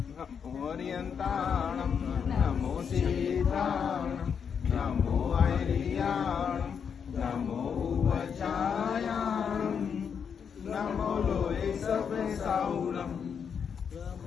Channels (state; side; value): quieter; right; 7.0 dB